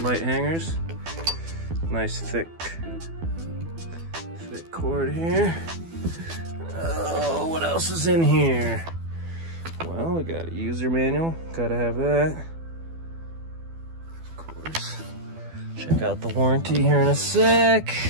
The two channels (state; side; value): late; left; 12 ms